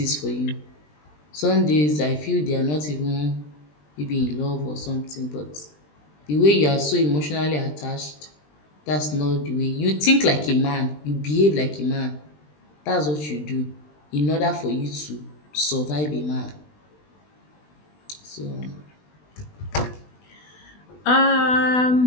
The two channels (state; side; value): late; right; 20 ms